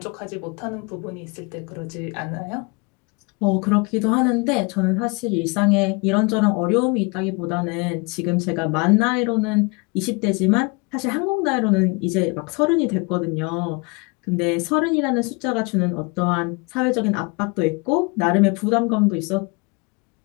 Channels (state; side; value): quieter; right; 29.5 dB